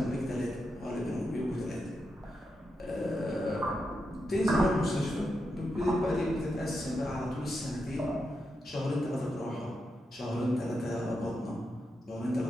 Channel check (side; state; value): both; normal; correlation 0.86